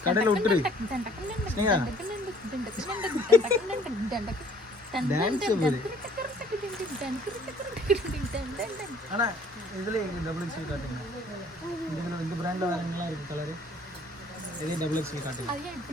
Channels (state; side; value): normal; both; correlation 0.57